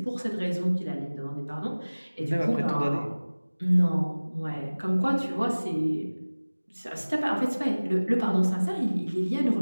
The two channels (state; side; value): inverted; both; correlation -1.00